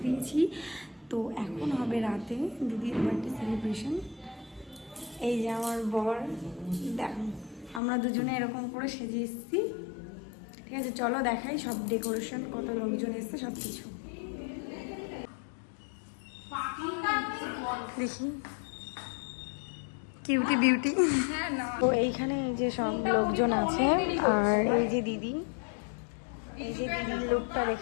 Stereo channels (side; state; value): right; drops out; at 7.8 s